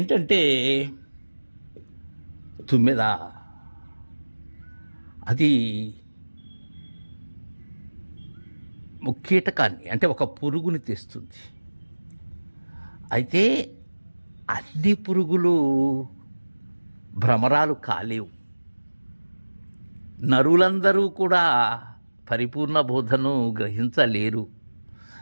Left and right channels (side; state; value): both; inverted; correlation -1.00